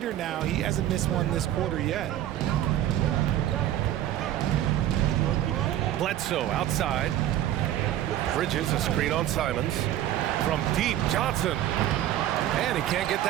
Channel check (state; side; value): quieter; left; 12.5 dB